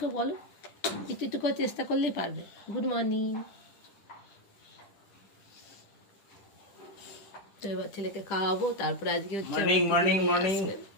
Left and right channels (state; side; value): late; right; 10 ms